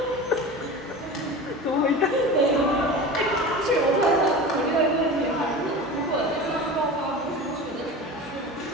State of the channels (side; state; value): both; normal; correlation 0.32